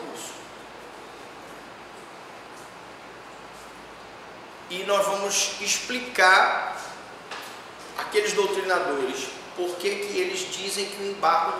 E nós vamos explicar aqueles doutrinadores por que eles dizem que o embargo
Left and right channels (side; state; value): both; identical; correlation 1.00